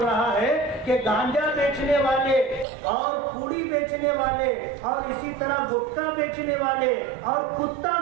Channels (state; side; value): drops out; left; at 2.7 s